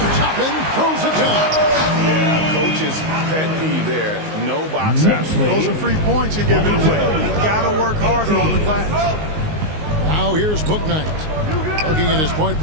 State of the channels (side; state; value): left; late; 19 ms